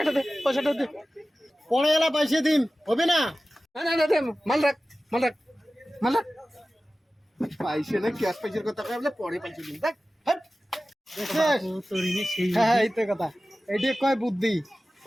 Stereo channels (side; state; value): both; normal; correlation 0.96